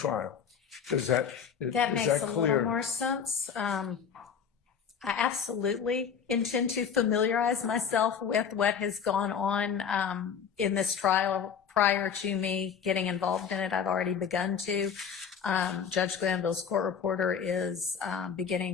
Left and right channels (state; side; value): quieter; right; 7.2 dB